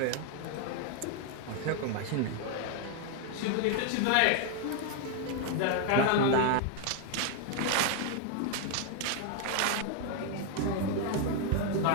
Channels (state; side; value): different; both; correlation 0.01